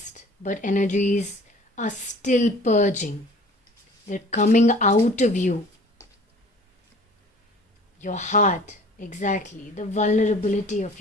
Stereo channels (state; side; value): normal; both; correlation 0.48